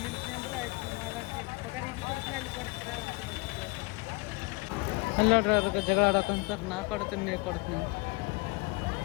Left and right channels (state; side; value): quieter; right; 26.5 dB